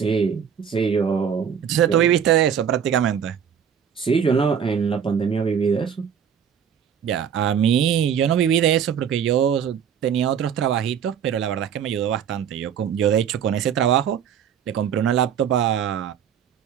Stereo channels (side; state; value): left; quieter; 8.1 dB